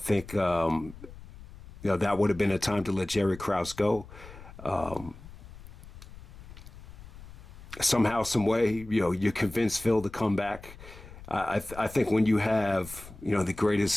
that would have been a time to let Jerry Krause go. Somehow, some way, you convince Phil to come back. I think when you have, the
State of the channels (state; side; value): noise; left; rumble, 17 dB below the sound